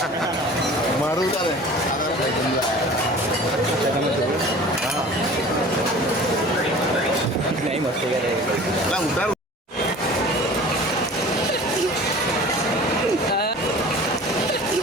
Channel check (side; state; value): both; normal; correlation 0.42